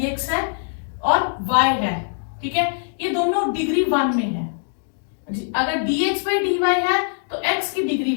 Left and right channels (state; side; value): silent; right; digital silence